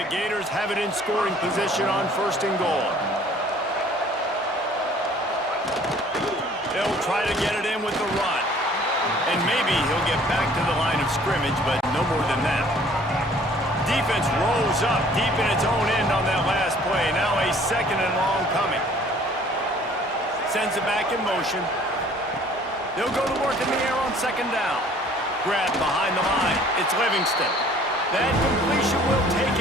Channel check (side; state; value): both; normal; correlation 0.54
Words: Gators have it in scoring position on 1st and goal. They'll try to get it in with the run. And maybe he'll get back to the line of scrimmage, but no more than that. Defense rolls up deep in its own end on that last play. Now a 2nd and long coming. Sends it back in motion. They'll go to work in the air on 2nd down. Grab behind the line. It's Livingston. That completion will take